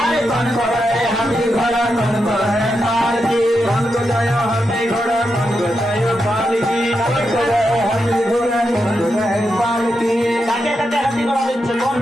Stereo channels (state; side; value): normal; both; correlation 0.86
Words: अरे कौन को जय हाथी घोड़ा, कौन को है माल की, कौन को जय हाथी घोड़ा, कौन को जय माल की, कौन को जय हाथी घोड़ा, कौन को जय माल की। কাকে কাকে হাতি ঘোড়া দিচ্ছে? কোন